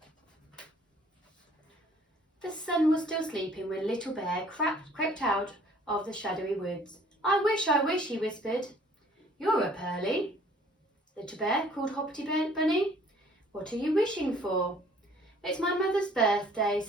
The sun was still sleeping when Little Bear crept out of the shadowy woods. I wish, he whispered. You're up early, Little Bear, called Hoppity Bunny. What are you wishing for? It's my mother's birthday,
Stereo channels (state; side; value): normal; both; correlation 0.56